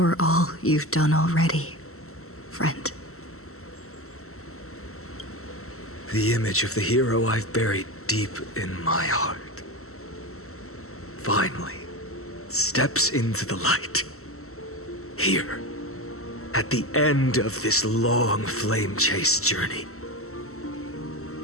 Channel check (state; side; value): late; right; 0.63 ms